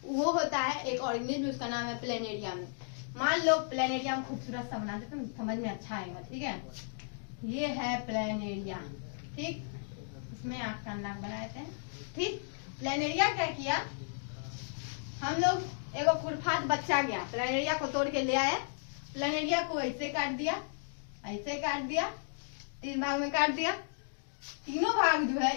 वो होता है एक ऑर्गेनिज्म, उसका नाम है प्लेनेरिया में। मान लो प्लेनेरिया में खूबसूरत सा बना देते हैं, समझ में अच्छा आएगा। ठीक है, ये है प्लेनेरिया। ठीक, इसमें आँख का नाक बनाए थे। ठीक, प्लेनेरिया क्या किया, हम लोग एक खुरफात बच्चा गया, प्लेनेरिया को तोड़ के ले आया, प्लेनेरिया को ऐसे काट दिया, ऐसे काट दिया, 3 भाग में काट दिया। तीनों भाग जो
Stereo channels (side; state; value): right; silent; digital silence